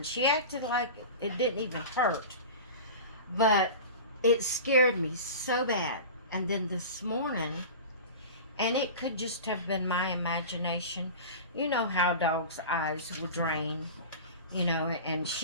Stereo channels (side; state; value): both; inverted; correlation -0.33